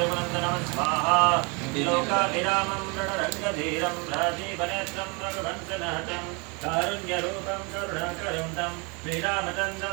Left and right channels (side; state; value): left; quieter; 30.7 dB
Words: वन्दनं स्वाहा लोकाभिरामं रणरङ्गधीरं राजीवनेत्रं रघुवंशनहतं कारुण्यरूपं करुणाकरं तं